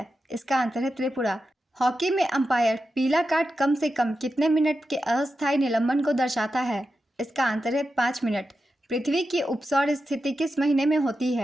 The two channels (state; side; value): normal; both; correlation 0.90